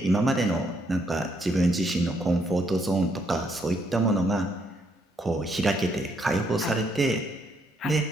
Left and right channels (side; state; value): both; normal; correlation 0.73